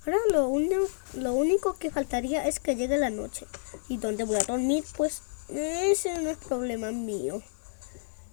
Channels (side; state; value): right; silent; digital silence